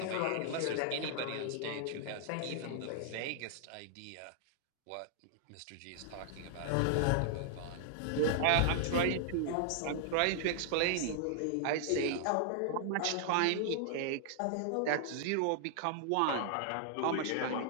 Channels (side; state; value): both; different; correlation -0.01